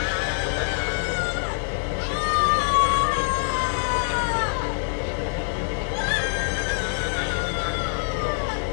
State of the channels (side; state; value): right; silent; digital silence